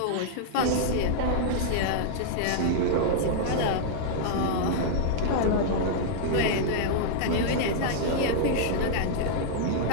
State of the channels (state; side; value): different; both; correlation -0.01